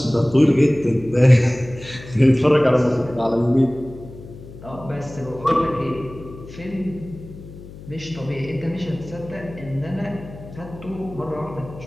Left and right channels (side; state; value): left; noise; hum, 16 dB below the sound